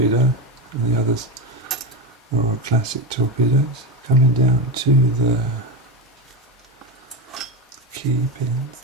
and the others are all classic torpedoes. Coming down to the key pins,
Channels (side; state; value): both; normal; correlation 0.17